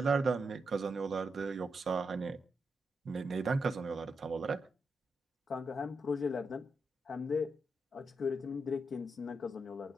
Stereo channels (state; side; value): normal; both; correlation 0.84